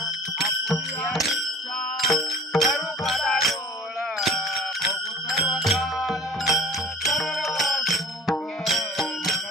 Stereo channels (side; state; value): both; normal; correlation 0.44